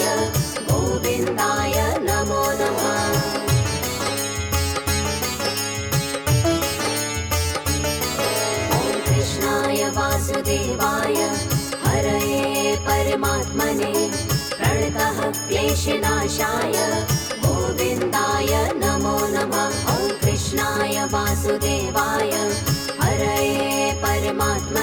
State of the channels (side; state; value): both; identical; correlation 1.00